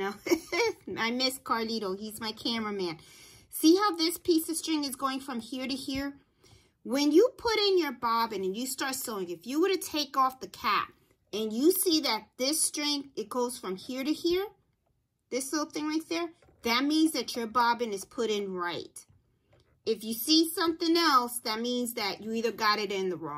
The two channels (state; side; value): identical; both; correlation 1.00